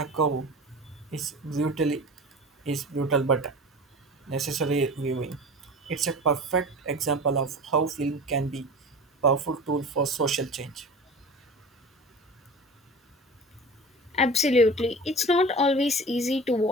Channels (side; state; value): both; normal; correlation 0.36